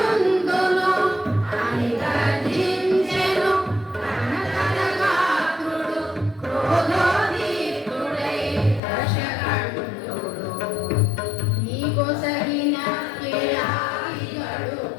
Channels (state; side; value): drops out; right; at 8.8 s